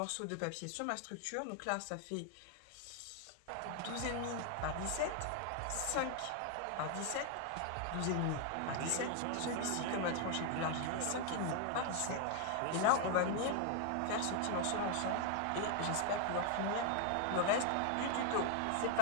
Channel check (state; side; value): different; both; correlation 0.00